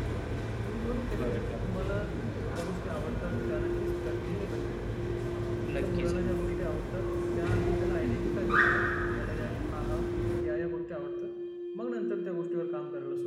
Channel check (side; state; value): both; identical; correlation 1.00